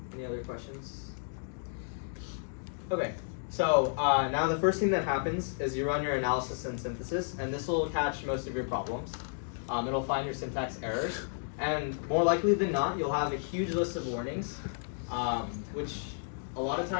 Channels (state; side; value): silent; right; digital silence